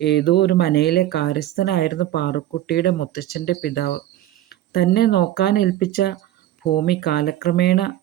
ഏതോ ഒരു മനയിലെ കാര്യസ്ഥനായിരുന്നു പാറുക്കുട്ടിയുടെ മുത്തച്ഛൻ്റെ പിതാവ്. തന്നെ നോക്കാനേൽപ്പിച്ച ഭൂമി കാലക്രമേണ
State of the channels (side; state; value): left; quieter; 13.3 dB